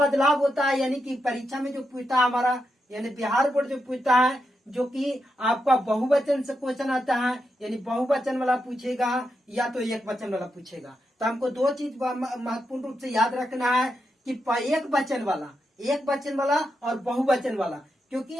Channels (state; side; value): normal; both; correlation 0.85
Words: होता है, यानी कि परीक्षा में जो पूछता है हमारा, यानी बिहार बोर्ड जो पूछता है, जो कि आपका बहुवचन से क्वेश्चन आता है, यानी बहुवचन वाला पूछेगा या तो एक वचन वाला पूछेगा। तो हमको दो चीज महत्वपूर्ण रूप से याद रखना है कि एक वचन वाला, एक वचन वाला और बहुवचन वाला। क्योंकि